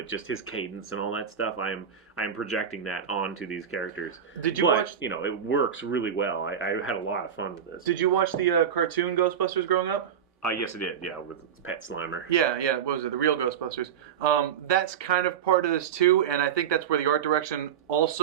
Just his cadence and all that stuff. I am projecting that onto these characters. But it works really well. I had a lot of fun with this. Did you watch the cartoon Ghostbusters growing up? Yes, I did. Yeah, with Pet Slimer. Yeah. What was it? The real Ghostbusters. That's kind of part of this too, and I think that's where the art direction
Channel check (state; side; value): quieter; left; 8.4 dB